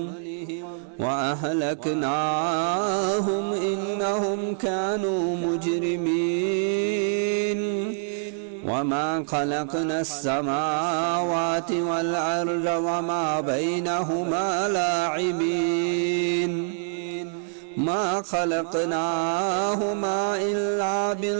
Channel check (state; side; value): silent; left; 56 dB below the other